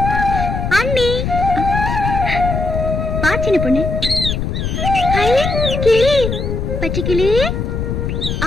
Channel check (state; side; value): noise; left; rumble, 2 dB below the sound